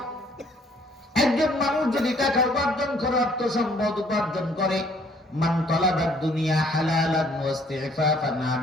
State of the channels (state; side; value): normal; both; correlation 0.61